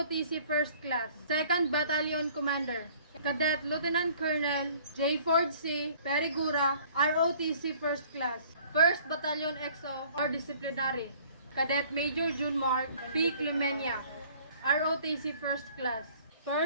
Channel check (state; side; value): inverted; both; correlation -0.54